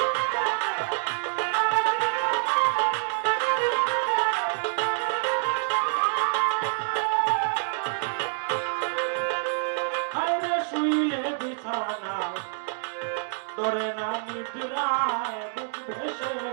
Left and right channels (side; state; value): left; silent; 60 dB below the other